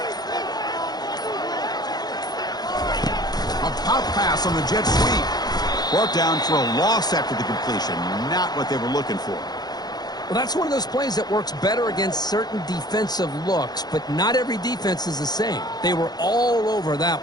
A pop pass on the jet sweep. Brought down for a loss after the completion. Not what they were looking for. Well, that's one of those plays that works better against certain defensive looks, but not every defense is the same. They were all over that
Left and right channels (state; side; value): late; right; 0.19 ms